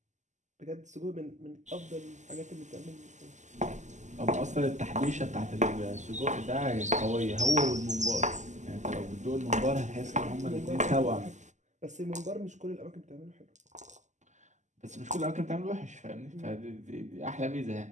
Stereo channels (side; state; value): left; late; 0.34 ms